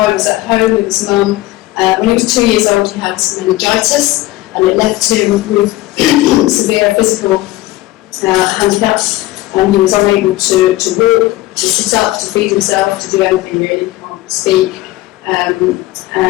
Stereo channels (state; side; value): quieter; right; 17.4 dB